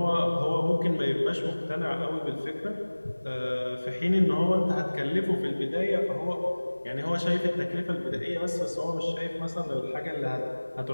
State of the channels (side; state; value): both; inverted; correlation -1.00